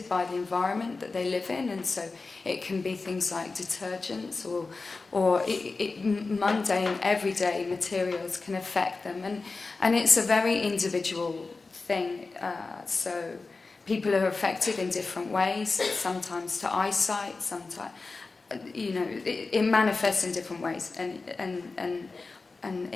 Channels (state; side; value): quieter; right; 3.9 dB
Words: by the environment that they live in, and so it can be things like detergents or mundane, everyday materials can affect them, and it's a very individual thing. So people are affected in different ways, sometimes to eyesight, sometimes, you know, it manifests in different ways, and